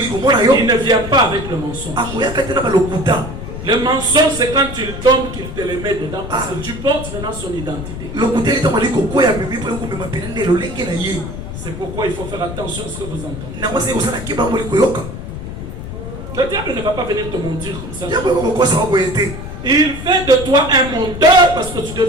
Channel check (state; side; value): noise; left; rumble, 9 dB below the sound